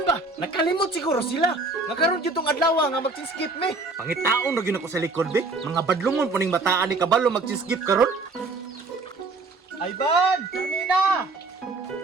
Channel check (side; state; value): left; quieter; 3.6 dB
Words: ba? Nakalimot siguro sila. Nga karon yun tong adlaw nga mag-skip me. Pangitaon na yun ako sa likod, be. Mga badlungon po ning bataan ni kabalo mag-skip karon. Ayban! Carmina!